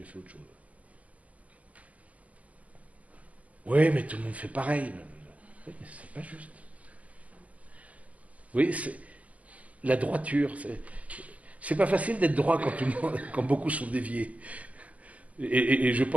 fait autre chose. Oui, mais tout le monde fait pareil. Oui, mais c'est pas juste. Oui, c'est la droiture. C'est pas facile d'être droit quand beaucoup sont déviés. Et je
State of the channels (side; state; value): left; late; 0.067 ms